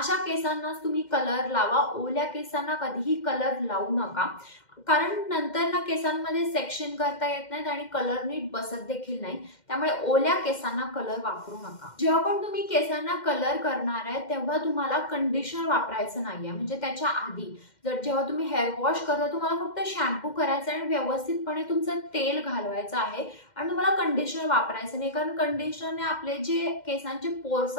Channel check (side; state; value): right; late; 2.1 ms